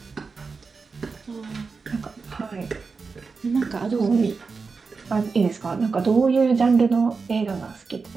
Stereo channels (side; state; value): left; quieter; 4.7 dB